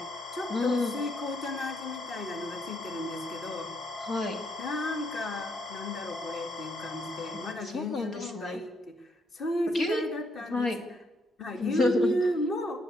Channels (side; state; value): both; normal; correlation 0.74